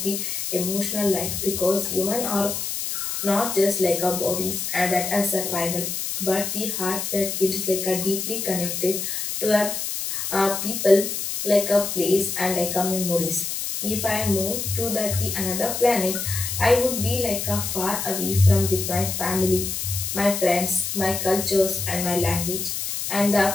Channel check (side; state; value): left; noise; hiss, 3 dB below the sound